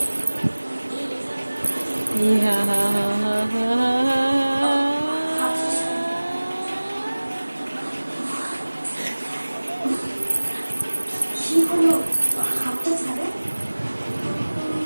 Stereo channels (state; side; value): inverted; both; correlation -1.00